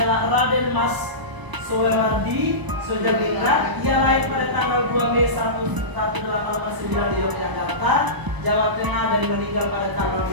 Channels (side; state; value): left; late; 1.0 ms